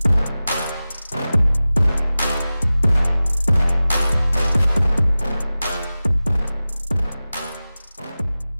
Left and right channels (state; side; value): inverted; both; correlation -0.97